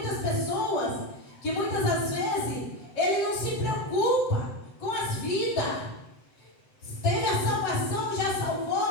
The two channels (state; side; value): late; right; 7.8 ms